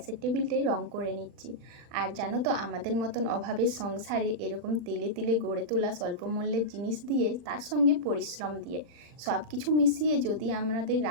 টেবিলটাই রং করে নিচ্ছি। আর জানো তো, আমাদের মতন অভাবের সংসারে এরকম তিলে তিলে গড়ে তোলা স্বল্প মূল্যের জিনিস দিয়ে, তার সঙ্গে পরিশ্রম দিয়ে, সব কিছু মিশিয়ে যদি আমাদের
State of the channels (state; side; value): late; left; 40 ms